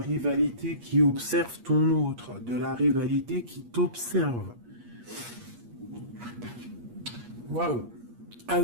qui observe ton autre, de la rivalité qui t'observe. Waouh!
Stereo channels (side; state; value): left; late; 8.4 ms